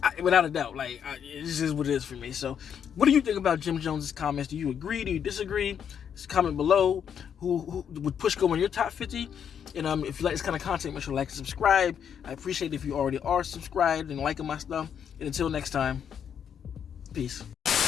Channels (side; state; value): right; quieter; 8.1 dB